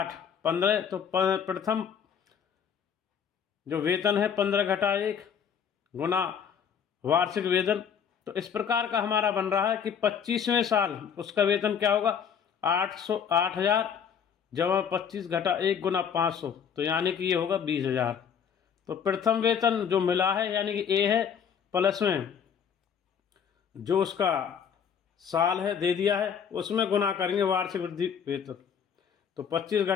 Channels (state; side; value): quieter; right; 7.6 dB